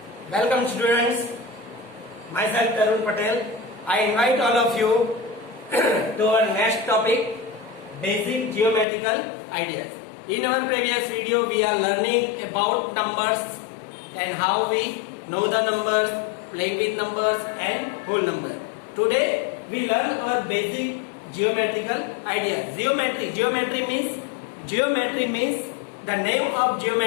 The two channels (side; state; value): right; drops out; at 8.8 s